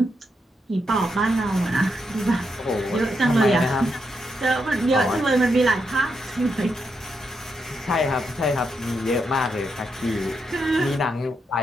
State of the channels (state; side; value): normal; both; correlation 0.82